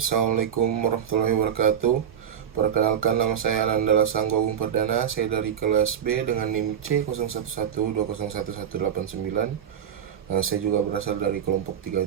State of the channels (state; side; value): quieter; left; 8.8 dB